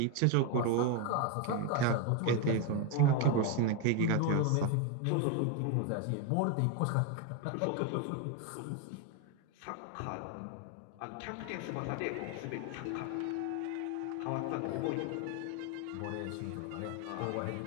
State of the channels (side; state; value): both; different; correlation 0.01